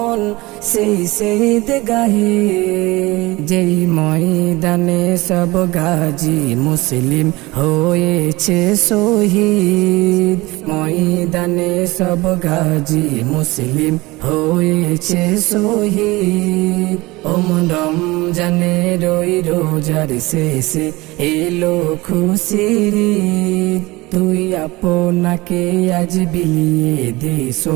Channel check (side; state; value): left; quieter; 21.4 dB